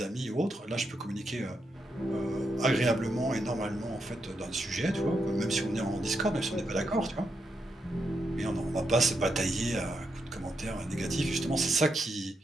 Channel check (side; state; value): both; normal; correlation 0.82